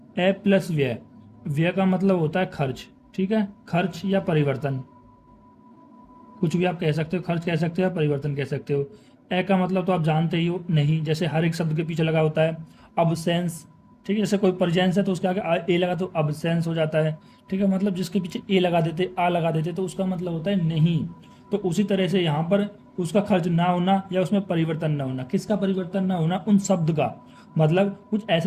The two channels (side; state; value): both; identical; correlation 1.00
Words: ए प्लस व्यय। व्यय का मतलब होता है खर्च, ठीक है। खर्च या परिवर्तन, कुछ भी आप कह सकते हो, खर्च कह सकते हो या परिवर्तन कह सकते हो। ए का मतलब तो आप जानते ही हो, नहीं। जैसे हर एक शब्द के पीछे लगा होता है अबसेंस, ठीक है। जैसे कोई परजेंस है तो उसके आगे ए लगा तो अबसेंस हो जाता है, ठीक है। मतलब जिसके पीछे ए लगा देते, आ लगा देते, तो उसका मतलब होता है नहीं। तो उसी तरह से यहाँ पर उसका खर्च ना होना या उसमें परिवर्तन ना होना। किसका परिवर्तन ना होना? उन शब्द का। मतलब कुछ